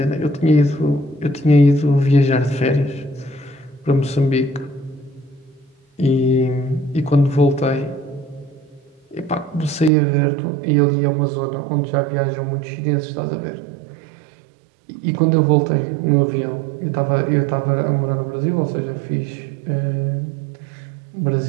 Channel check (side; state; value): left; drops out; at 9.9 s